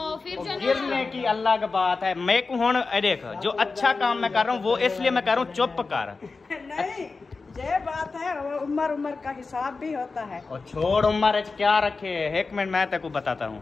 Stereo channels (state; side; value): quieter; right; 4.1 dB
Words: फिर जो गिरने की अल्लाह की बात है। मैं को हुन देख, जो अच्छा काम मैं कर रहा हूँ वो इसलिए मैं कर रहा हूँ, चुप कर। नहीं, ये बात है, वो उम्र का हिसाब भी होता है। और छोड़ उम्र क्या रखे, एक मिनट मैं तेको बताता हूँ।